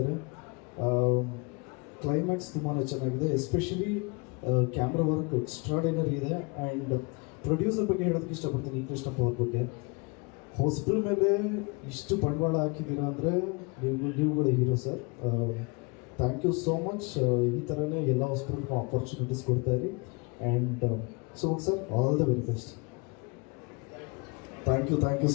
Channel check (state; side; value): quieter; right; 30.3 dB